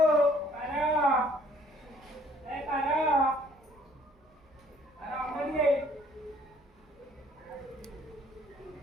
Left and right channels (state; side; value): normal; both; correlation 0.60